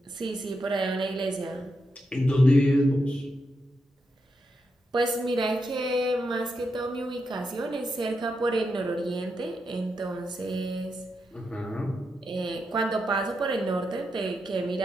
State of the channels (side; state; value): both; normal; correlation 0.85